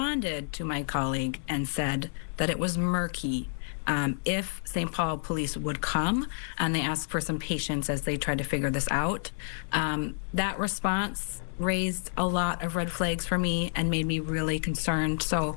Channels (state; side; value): silent; right; 58 dB below the other